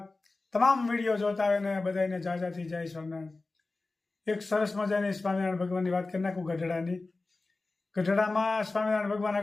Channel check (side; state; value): right; quieter; 3.4 dB